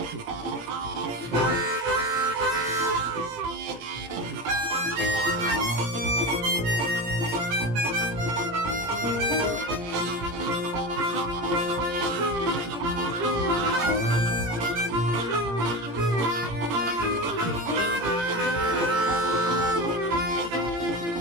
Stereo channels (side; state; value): left; late; 18 ms